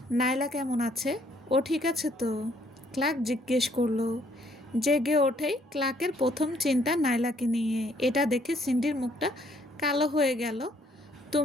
নাইলা কেমন আছে? ও ঠিক আছে তো? ক্লার্ক জিজ্ঞেস করলো। জেগে ওঠেই ক্লার্কের প্রথম চিন্তা নাইলাকে নিয়ে। এটা দেখে সিন্ডির মুখটা কালো হয়ে গেল।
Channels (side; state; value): both; normal; correlation 0.66